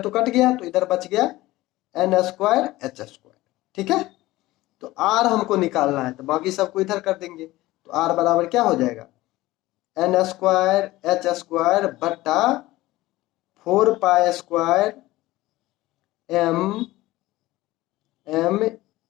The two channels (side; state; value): right; quieter; 18.0 dB